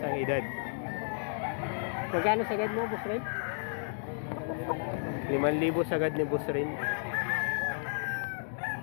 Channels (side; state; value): right; silent; digital silence